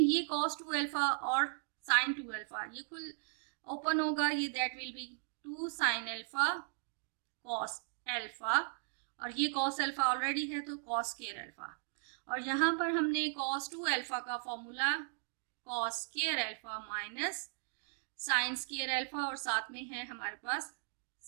cos 2 alpha और sin 2 alpha ये कुल open होगा, ये that will be 2 sin alpha cos alpha, और ये cos अल्फा ऑलरेडी है तो cos स्क्वायर अल्फा, और यहाँ पर हमने cos 2 अल्फा का formula cos square alpha minus sin square alpha, और साथ में है हमारे पास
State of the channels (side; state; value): left; silent; digital silence